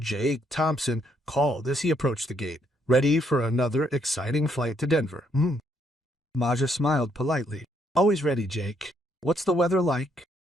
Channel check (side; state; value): both; normal; correlation 0.72